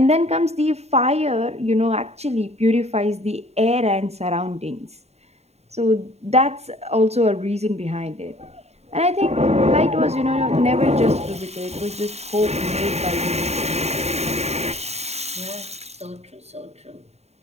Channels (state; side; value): late; left; 0.31 ms